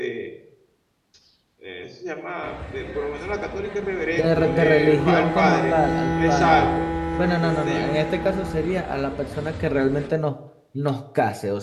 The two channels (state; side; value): identical; both; correlation 1.00